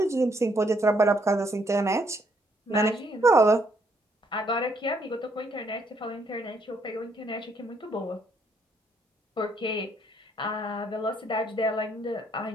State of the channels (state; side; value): normal; both; correlation 0.70